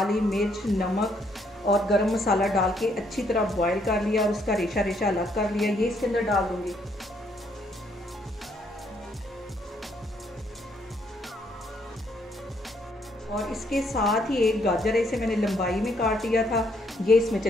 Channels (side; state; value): both; normal; correlation 0.71